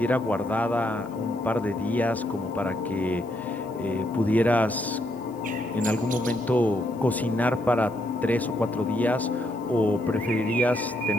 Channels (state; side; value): noise; left; hiss, 29 dB below the sound